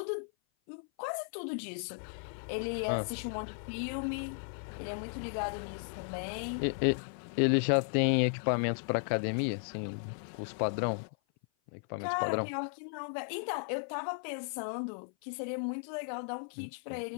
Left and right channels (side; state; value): right; silent; 54 dB below the other